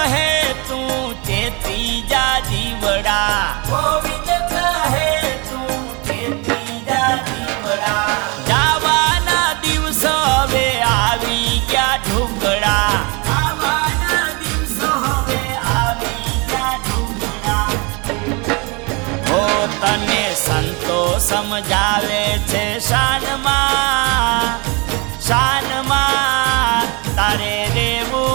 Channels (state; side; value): quieter; left; 29.2 dB